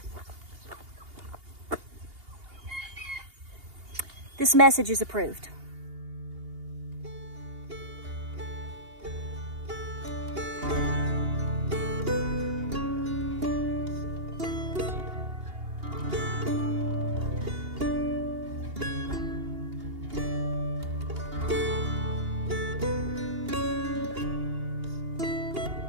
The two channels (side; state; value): left; late; 2.8 ms